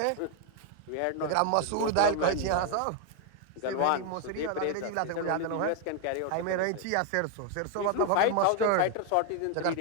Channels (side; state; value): both; different; correlation 0.00